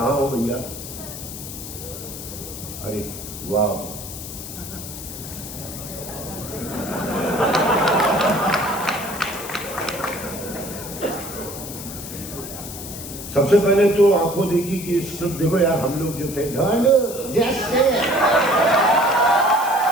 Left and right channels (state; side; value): noise; left; hiss, 10 dB below the sound